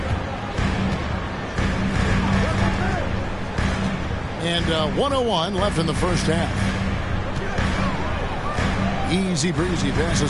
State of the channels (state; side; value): identical; both; correlation 1.00